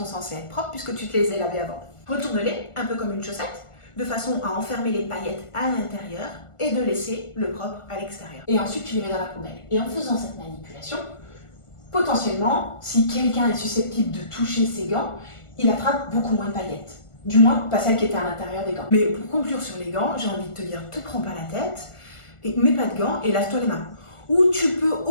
censées être propres puisque tu te les as lavées avant. Retourne-les, un peu comme une chaussette, de façon à enfermer les paillettes à l'intérieur et de laisser le propre à l'extérieur. Et ensuite, tu les mets dans la poubelle. Et en faisant cette manipulation, potentiellement, si quelqu'un est susceptible de toucher ses gants, il attrape beaucoup moins de paillettes. Du moins, pas celles qui étaient à l'intérieur des gants. Mais pour conclure sur les gants, j'ai envie de te dire, te prends pas la tête, et mets pas de gants et lave-toi les mains. Ou tu peux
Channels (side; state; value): right; late; 1.4 ms